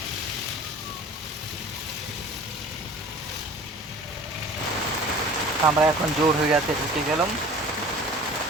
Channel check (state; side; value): normal; both; correlation 0.43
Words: আমরা এখন জোরহিরাতে ঢুকে গেলাম।